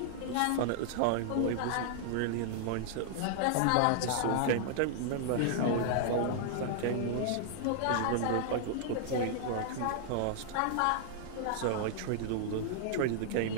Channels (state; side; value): different; both; correlation -0.01